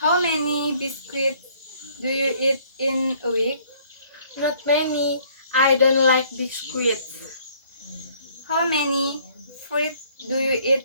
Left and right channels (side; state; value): both; inverted; correlation -0.60